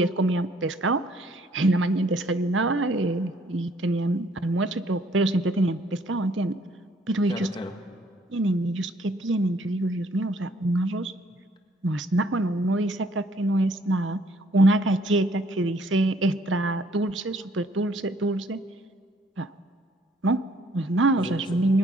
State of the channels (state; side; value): normal; both; correlation 0.63